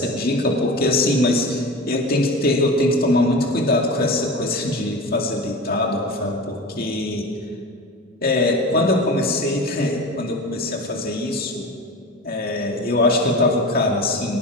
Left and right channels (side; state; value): both; normal; correlation 0.30